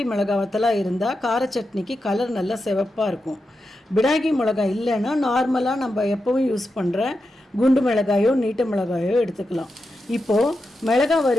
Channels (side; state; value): both; normal; correlation 0.88